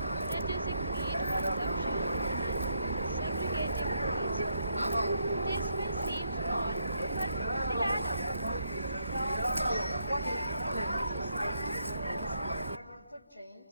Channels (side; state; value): both; inverted; correlation -0.77